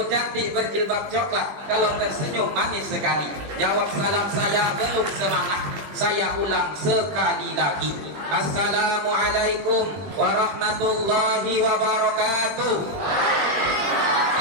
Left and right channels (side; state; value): left; late; 20 ms